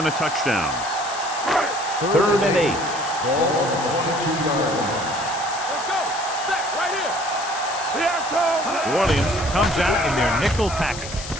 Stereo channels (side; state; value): left; noise; hiss, 11 dB below the sound